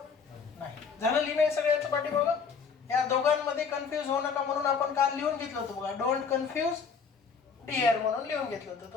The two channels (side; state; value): right; quieter; 5.8 dB